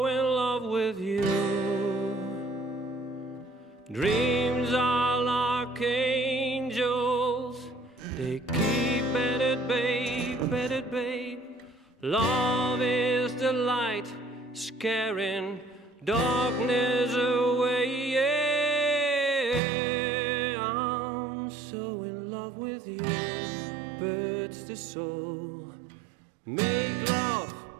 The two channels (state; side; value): drops out; left; at 19.6 s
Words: in love with you. Dreams are like angels. They keep at it, babe, at it, babe. Love is the light, scaring darkness away. Yeah, I'm so in love with you. Birds the soul, make love